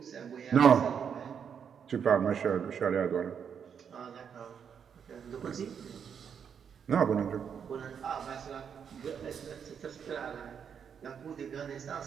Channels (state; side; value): quieter; left; 7.4 dB